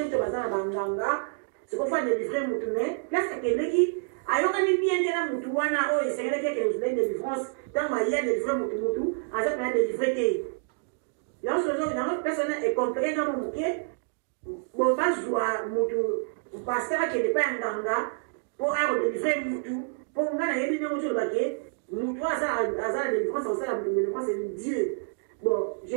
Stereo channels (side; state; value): left; silent; digital silence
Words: to bazana banganga siko fa délivrer mutu ne place keleki ayoka ni bien tena mutu wana o esengela ke nous donne délivrance dans ma hier délivrer mutu aza na délivrer te là ce jour dans personne est compris dans mon muke bon pas joie mutu pasteur qui n'est pas nganga pour délivrer mutu pour ngana yebi ne mutu baké mutu aza délivrance on ça la délivrance c'est Dieu. Bon, je